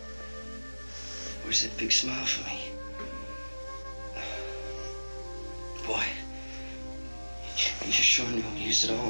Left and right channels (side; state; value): both; inverted; correlation -1.00